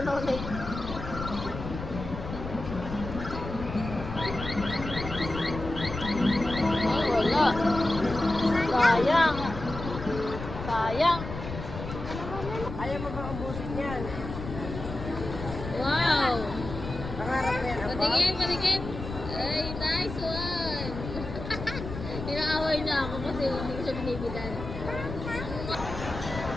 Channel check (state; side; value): noise; left; rumble, 8 dB below the sound